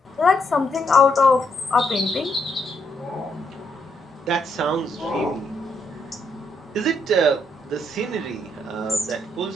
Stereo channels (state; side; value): normal; both; correlation 0.76